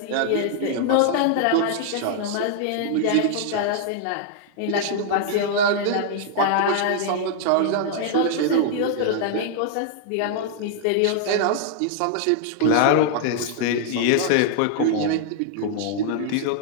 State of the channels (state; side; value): different; both; correlation -0.01